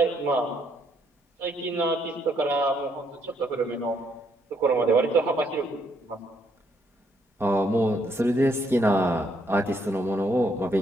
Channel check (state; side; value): normal; both; correlation 0.72